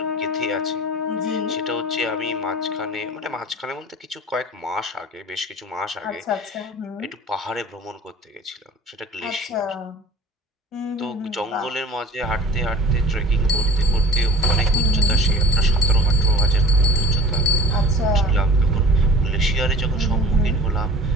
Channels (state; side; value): normal; both; correlation 0.44